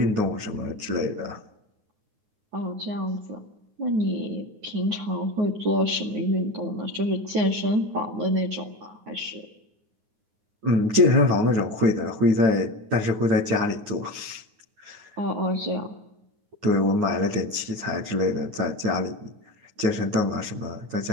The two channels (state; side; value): late; left; 9.6 ms